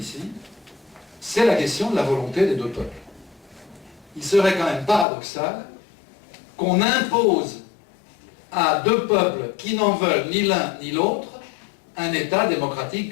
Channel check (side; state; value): right; drops out; at 5.1 s